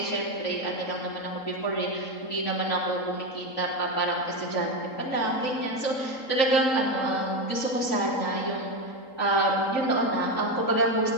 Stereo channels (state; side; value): late; right; 3.8 ms